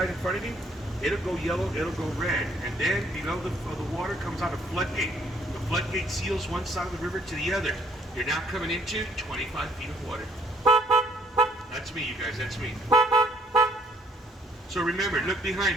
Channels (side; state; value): both; normal; correlation 0.64